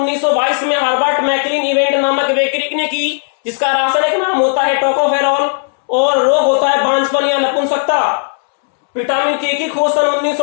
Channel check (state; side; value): silent; right; digital silence